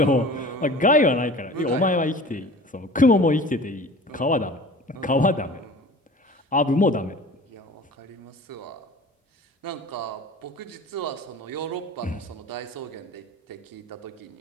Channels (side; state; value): both; normal; correlation 0.41